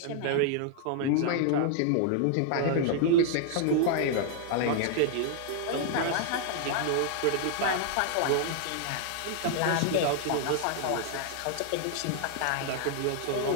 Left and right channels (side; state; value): both; different; correlation -0.01